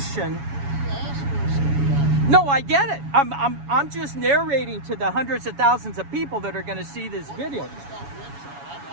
No, I get it. I'm just narrating to the hundreds of thousands of people that are going to see this video.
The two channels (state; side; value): late; left; 7.1 ms